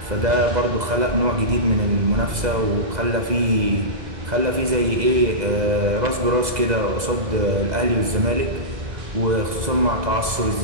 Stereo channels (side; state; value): left; late; 2.0 ms